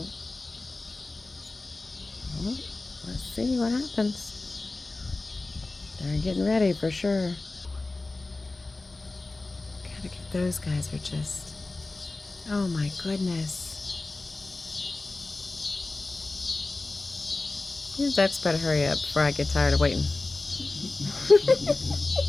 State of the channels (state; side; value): quieter; right; 3.3 dB